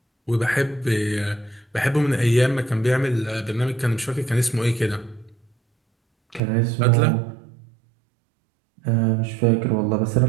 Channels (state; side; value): drops out; left; at 6.4 s